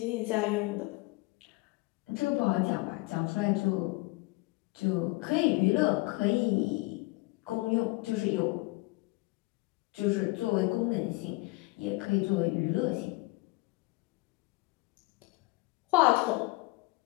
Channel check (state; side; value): quieter; right; 23.5 dB